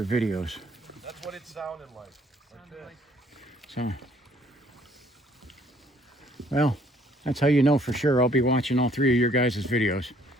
videos. That's what it sounded like. Like this. So, well, that's how you know for sure I'll be watching all 3 of your guys' videos.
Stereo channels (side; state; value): both; normal; correlation 0.61